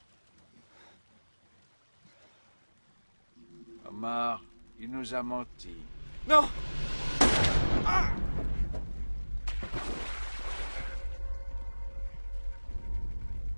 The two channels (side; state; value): both; inverted; correlation -1.00